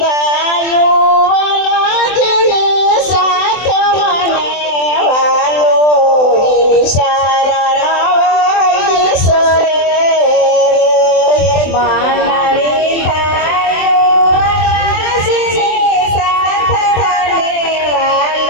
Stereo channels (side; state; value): right; late; 24 ms